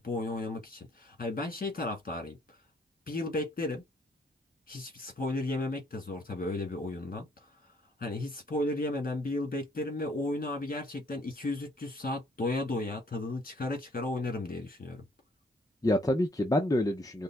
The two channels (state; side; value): normal; both; correlation 0.65